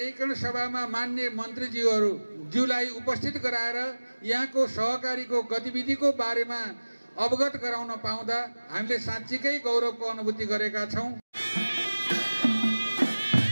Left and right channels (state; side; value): inverted; both; correlation -1.00